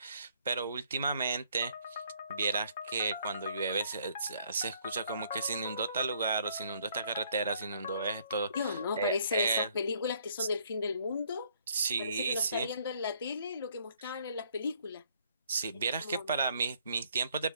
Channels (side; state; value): both; inverted; correlation -0.65